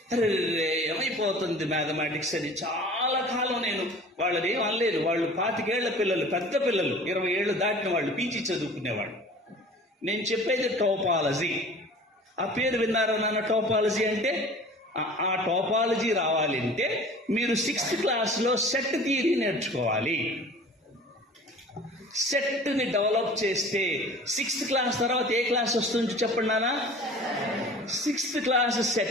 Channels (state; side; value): normal; both; correlation 0.44